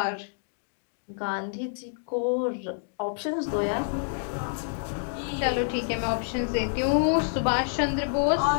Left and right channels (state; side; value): silent; right; digital silence